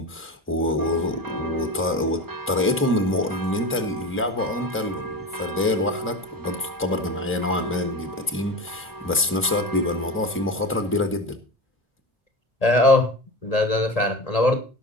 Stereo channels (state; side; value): normal; both; correlation 0.26